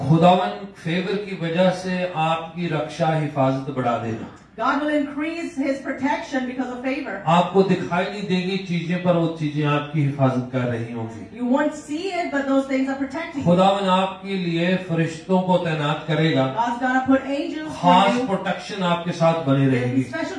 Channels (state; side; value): identical; both; correlation 1.00